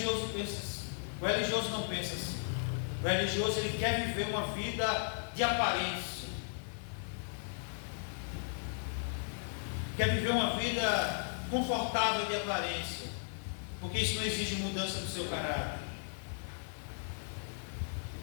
pensa assim. O religioso não pensa assim. O religioso, ele quer viver uma vida de aparência, quer viver uma vida confortável de aparência, porque isso não exige mudança do seu caráter.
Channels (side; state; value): right; silent; 54 dB below the other